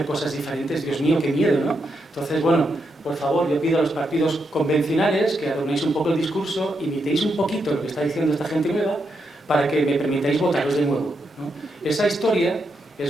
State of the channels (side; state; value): both; normal; correlation 0.82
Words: cosas diferentes? Dios mío, qué miedo, ¿no? Entonces, bueno, por favor, yo pido a los partidos convencionales que adornéis un poco el discurso, imitéis un poquito lo que está diciendo esta gente nueva, para que me permitáis votaros de nuevo, ¿no? Esa historia